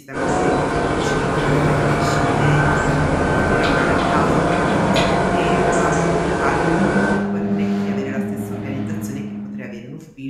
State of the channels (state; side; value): identical; both; correlation 1.00